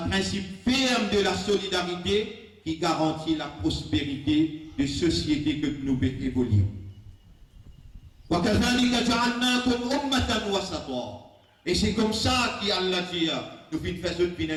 principe ferme de la solidarité qui garantit la prospérité de société que nous pouvons évoluer. Et c'est comme ça qu'Allah dit, nous faisons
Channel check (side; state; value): both; identical; correlation 1.00